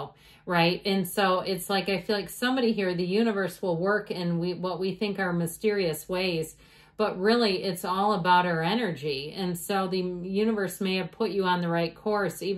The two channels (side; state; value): both; identical; correlation 1.00